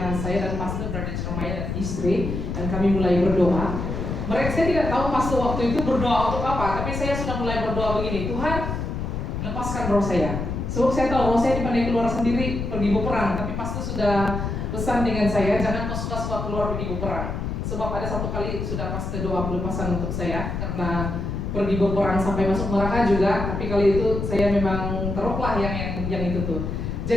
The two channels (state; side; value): noise; left; rumble, 3 dB below the sound